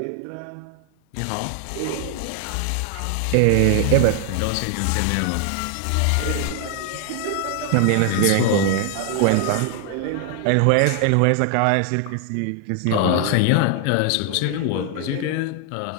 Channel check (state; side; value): different; both; correlation 0.00